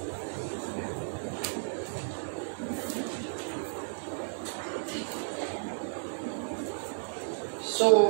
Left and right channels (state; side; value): silent; left; 56 dB below the other